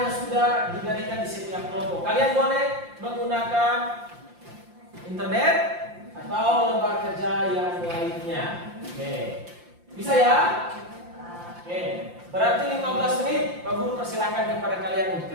yang sudah diberikan di setiap kelompok. Kalian boleh menggunakan internet atau lembar kerja yang lainnya. Oke, bisa ya? Oke, berarti 15 menit Pak Guru persilakan kepada kalian untuk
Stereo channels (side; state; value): left; late; 5.7 ms